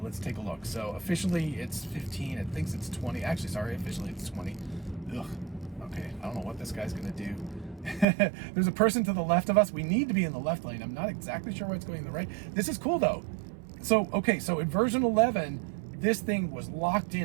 let's take a look. So officially it's 15, it thinks it's 20. Actually, sorry, officially it's 20. Ugh, okay, I don't know what this guy's gonna do. There's a person to the left of us. We need to be in the left lane. I'm not exactly sure why it's going in the right. This is cool though. So, okay, so in version 11, this thing was locked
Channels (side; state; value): left; drops out; at 8.1 s